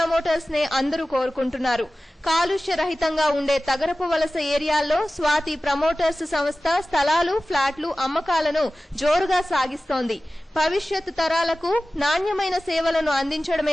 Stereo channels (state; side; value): normal; both; correlation 0.96